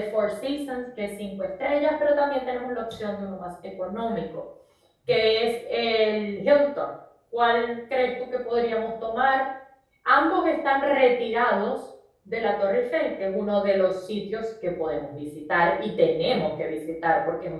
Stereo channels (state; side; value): identical; both; correlation 1.00